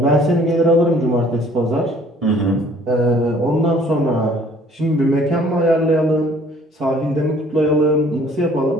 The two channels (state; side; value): normal; both; correlation 0.56